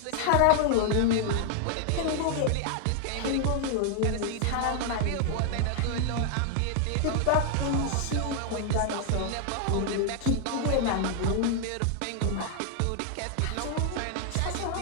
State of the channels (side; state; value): both; different; correlation 0.00